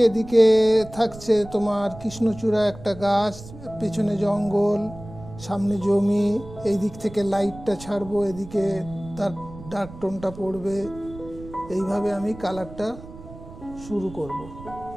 এদিকে থাকছে তোমার কৃষ্ণচূড়া একটা গাছ, পেছনে জঙ্গল, সামনে জমি। এই দিক থেকে লাইটটা ছাড়বো, এদিকে তার ডার্ক টোনটা পড়বে। এইভাবে আমি কালারটা শুরু করব।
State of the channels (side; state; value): right; noise; rumble, 16 dB below the sound